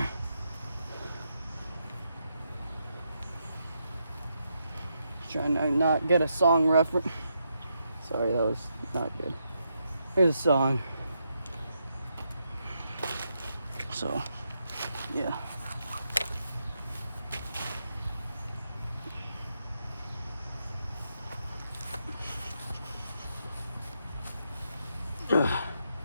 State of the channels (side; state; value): both; inverted; correlation -0.82